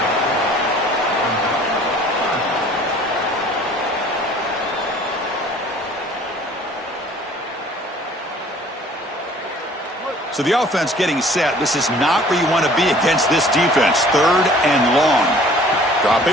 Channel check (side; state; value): both; normal; correlation 0.52